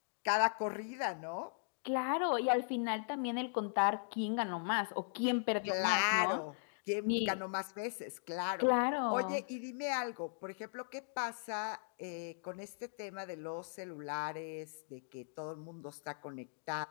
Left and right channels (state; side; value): silent; right; digital silence